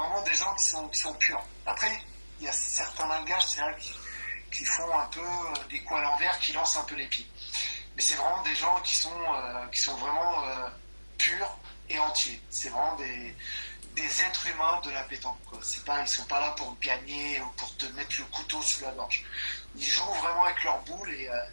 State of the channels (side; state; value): both; inverted; correlation -1.00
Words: des gens qui sont purs. Après, il y a certains Malgaches, c'est vrai, qui font un peu des coups à l'envers, qui lancent un peu les pieds. Mais c'est vraiment des gens qui sont vraiment purs et entiers. C'est vraiment des êtres humains de la pétanque, quoi. C'est pas, ils sont pas là pour gagner ou pour te mettre le couteau sous la gorge. Ils jouent vraiment avec leur boule et